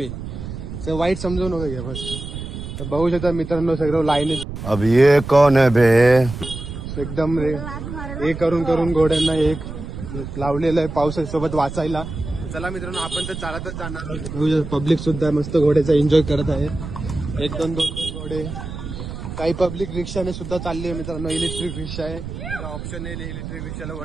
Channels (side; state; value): right; noise; rumble, 8 dB below the sound